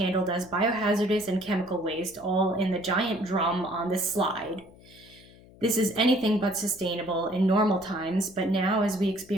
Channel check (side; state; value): left; noise; hum, 23 dB below the sound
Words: as biohazardous and chemical waste, all in the giant drum on this slide. This is anything but sustainable in normal times, but now as we